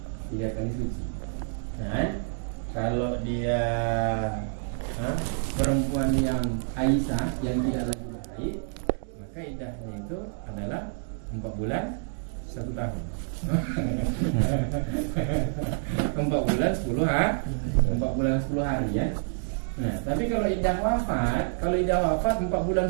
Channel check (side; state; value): left; silent; 58 dB below the other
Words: Nah, kalau dia perempuan yang Aisyah yang tidak lagi berhaid, maka iddahnya itu adalah 4 bulan 1 tahun. 4 bulan 10 hari ya. Nah, tapi kalau iddah wafat 4 bulan